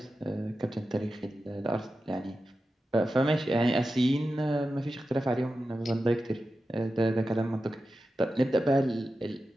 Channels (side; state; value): both; normal; correlation 0.92